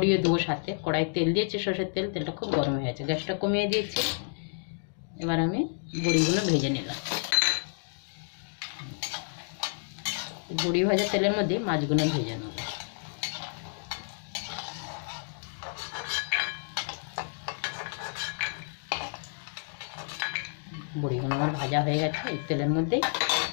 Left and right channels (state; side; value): silent; right; digital silence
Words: দেবো সাথে। কড়াই তেল দিয়েছি, সরষের তেল। তেলটা খুব গরম হয়ে গেছে, গ্যাসটা কমিয়ে দিয়েছি। এবার আমি বড়িগুলো ভেজে নিলাম। বড়ি ভাজা তেলের মধ্যে মাছগুলো ভেজে নেব। বড়িগুলো আমার ভাজা হয়ে গেছে। এই তেলের মধ্যেই